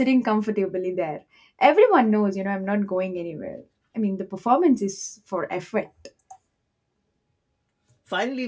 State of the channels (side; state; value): both; identical; correlation 1.00